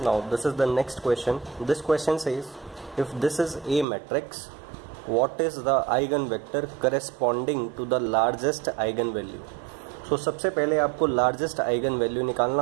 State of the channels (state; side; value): drops out; left; at 3.9 s